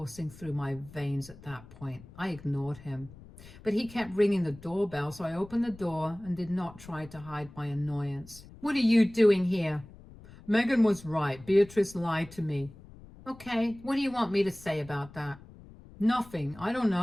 through my veins at that point. I ignored him. But he kept ringing the doorbell, so I opened the door and did not try to hide my annoyance. "What are you doing here?" "Megan was right. Beatrice lied to me." "Okay, what do you want me to say about that?" "Nothing. I don't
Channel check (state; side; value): noise; left; rumble, 20 dB below the sound